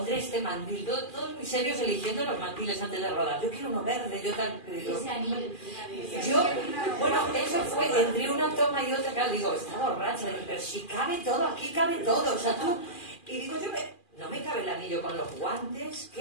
este mandil, todos muy serios eligiendo los mandiles antes de rodar. Yo quiero uno verde, yo tal. Bueno, eso fue entre una toma y otra, claro, digo, está borracha, pero si cabe todo, aquí cabe todo, o sea, tú. Y digo, no me cabe el anillo con los guantes,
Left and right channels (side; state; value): right; late; 2.4 ms